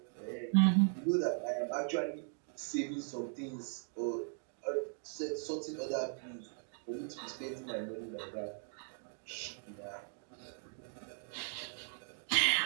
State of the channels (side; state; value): left; silent; 52 dB below the other